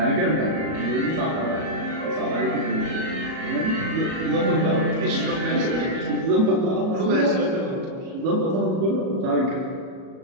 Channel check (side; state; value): left; late; 37 ms